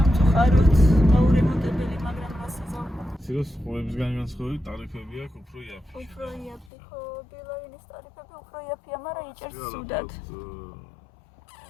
გაურემონტებელი, მაგრამ რასიზო. სიროს ხუებისგან განსხვავებით ტარიფები აქვს უფრო იაფი. უფრო იაფი, ხო, ბილაინის ტარიფები უფრო იაფია, მაგრამ იჭერს ცუდად.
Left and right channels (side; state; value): right; drops out; at 6.7 s